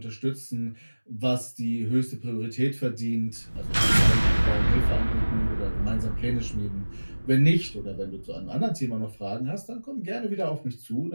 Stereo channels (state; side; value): inverted; both; correlation -1.00